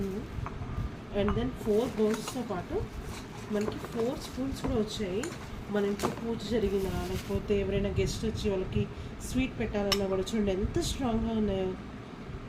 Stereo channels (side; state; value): both; identical; correlation 1.00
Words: అండ్ దెన్ 4 బౌల్స్తో పాటు మనకి 4 స్పూన్స్ కూడా వచ్చాయి. మన ఇంట్లో పూజ జరిగినా లేకపోతే ఎవరైనా గెస్ట్ వచ్చి వాళ్ళకి స్వీట్ పెట్టాలన్నా కూడా చూడండి ఎంత స్ట్రాంగ్గా ఉన్నాయో.